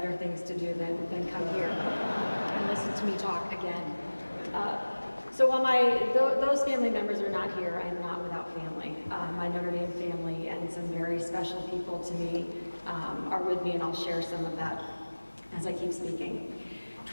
things to do than come here and listen to me talk again. So while those family members are not here, I am not without family. My Notre Dame family and some very special people to me are with me, and I'll share some of that as I keep speaking.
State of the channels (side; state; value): both; inverted; correlation -1.00